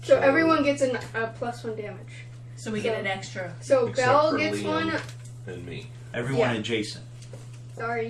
So everyone gets a +1 damage. So we get an extra. So Except Belle for gets Liam. one. And me. Everyone Yeah. adjacent.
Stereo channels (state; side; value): identical; both; correlation 1.00